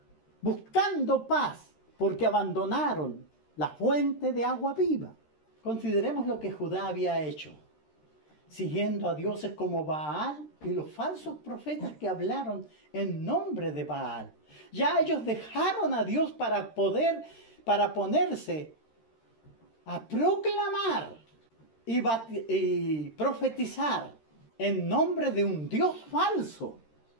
buscando paz, porque abandonaron la fuente de agua viva. Consideremos lo que Judá había hecho, siguiendo a dioses como Baal y los falsos profetas que hablaron en nombre de Baal. Ya ellos dejaron a Dios para ponerse a proclamar y profetizar en nombre de un Dios falso,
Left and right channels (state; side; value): late; right; 13 ms